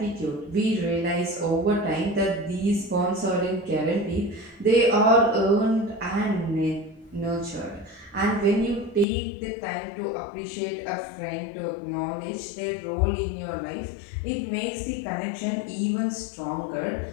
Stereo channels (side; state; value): right; drops out; at 9.1 s